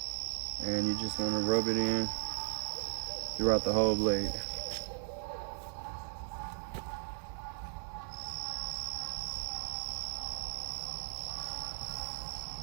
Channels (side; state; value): left; silent; 53 dB below the other